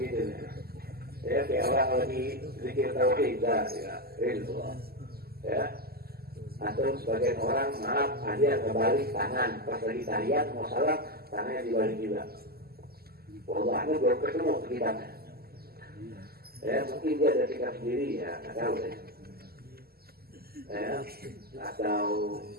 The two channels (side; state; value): left; late; 0.45 ms